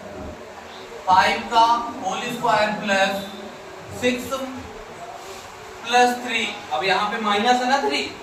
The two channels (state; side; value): identical; both; correlation 1.00